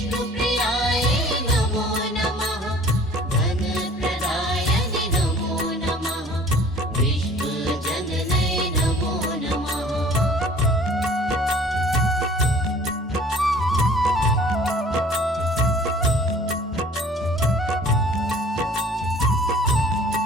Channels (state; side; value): normal; both; correlation 0.50